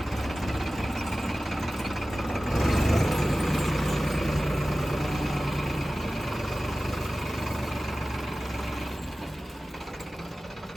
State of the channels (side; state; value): both; normal; correlation 0.96